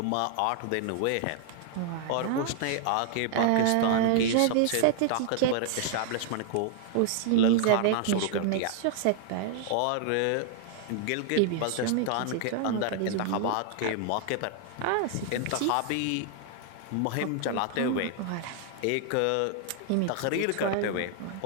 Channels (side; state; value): both; different; correlation 0.00